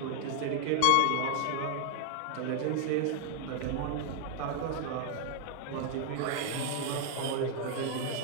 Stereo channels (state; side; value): different; both; correlation 0.00